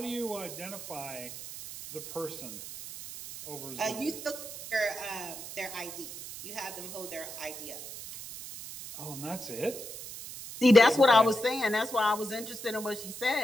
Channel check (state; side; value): noise; right; hiss, 11 dB below the sound